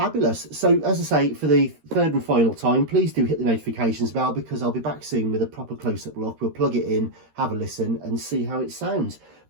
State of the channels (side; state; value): left; late; 13 ms